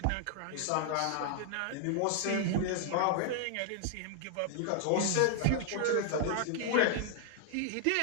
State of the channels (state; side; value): different; both; correlation 0.00